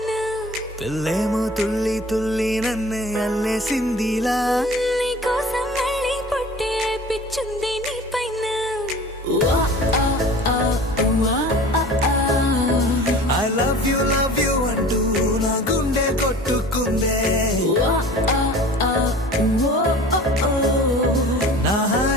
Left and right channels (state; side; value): normal; both; correlation 0.42